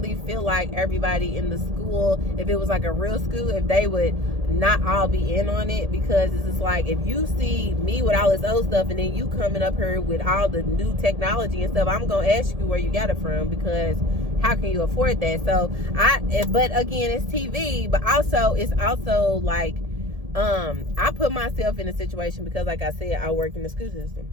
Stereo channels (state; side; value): late; left; 1.7 ms